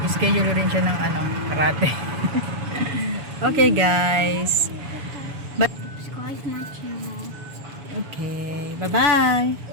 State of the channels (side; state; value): left; late; 7.0 ms